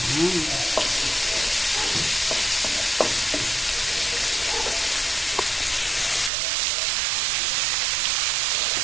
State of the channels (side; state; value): left; drops out; at 6.3 s